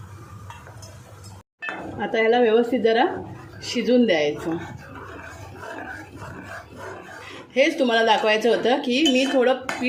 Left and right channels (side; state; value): both; identical; correlation 1.00